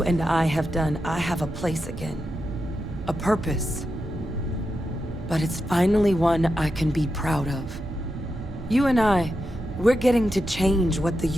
and I have done, I have a place again. A purpose. But it's finally one I can be proud of. You and I, we're getting to change what the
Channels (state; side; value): normal; both; correlation 0.87